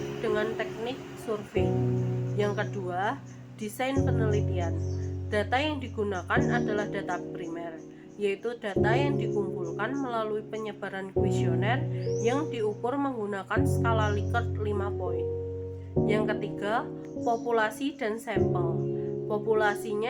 dengan teknik survei. Yang kedua, desain penelitian. Data yang digunakan adalah data primer, yaitu data yang dikumpulkan melalui penyebaran kuesioner yang diukur menggunakan skala Likert 5 poin. Yang ketiga, populasi dan sampel.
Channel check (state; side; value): identical; both; correlation 1.00